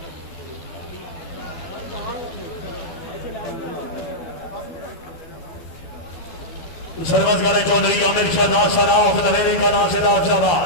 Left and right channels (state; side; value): late; right; 12 ms